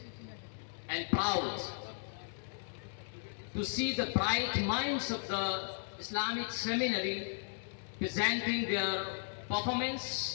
and proud to see the bright minds of the Islamic seminary presenting their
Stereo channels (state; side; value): silent; right; digital silence